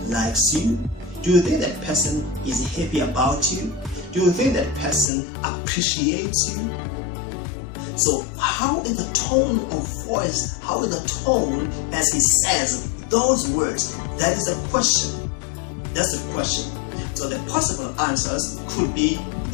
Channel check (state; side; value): drops out; right; at 5.1 s